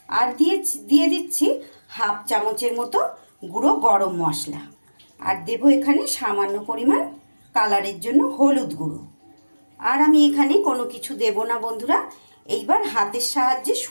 আর দিয়ে দিচ্ছি হাফ চামচের মতো গুঁড়ো গরম মশলা, আর দেবো এখানে সামান্য পরিমাণ কালারের জন্য হলুদ গুঁড়ো। আর আমি এখানে কোনো কিছু দেব না বন্ধুরা। এইবার হাতের সাহায্যে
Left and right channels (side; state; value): both; inverted; correlation -1.00